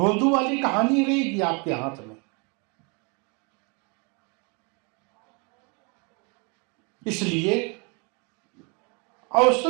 वाली कहानी रहेगी आपके हाथ में। इसलिए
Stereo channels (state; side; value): quieter; left; 33.2 dB